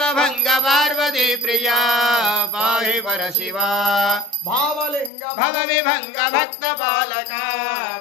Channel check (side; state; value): right; drops out; at 5.1 s